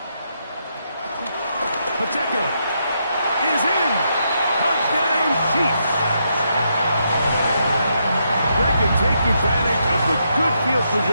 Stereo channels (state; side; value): inverted; both; correlation -0.79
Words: Pacheco is in. Touchdown, Chiefs. Greg can take advantage of the good field